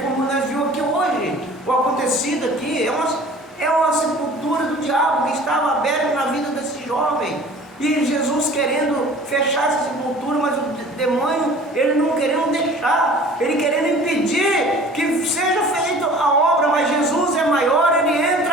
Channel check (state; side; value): normal; both; correlation 0.46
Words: como nós vimos aqui hoje. O acontecido aqui é uma sepultura do diabo que estava aberta na vida desse jovem. E Jesus querendo fechar essa sepultura, mas o demônio, ele não querendo deixar, ele querendo impedir que seja feita a obra. Mas Jesus é maior, ele